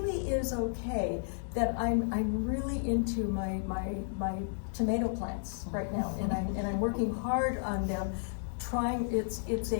is okay that I'm really into my tomato plants right now, and I'm working hard on them.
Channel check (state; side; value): silent; right; 56 dB below the other